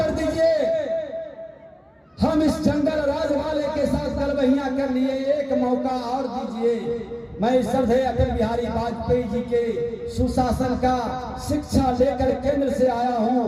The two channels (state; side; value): identical; both; correlation 1.00